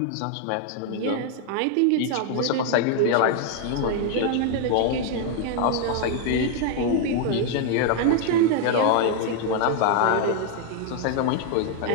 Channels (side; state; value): both; different; correlation 0.00